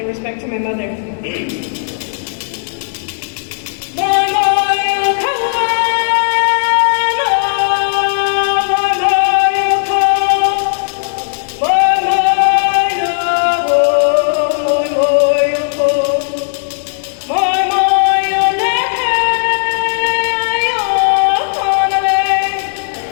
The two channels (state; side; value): silent; right; digital silence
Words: respect to my mother.